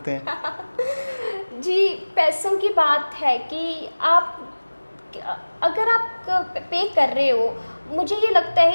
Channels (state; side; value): inverted; both; correlation -1.00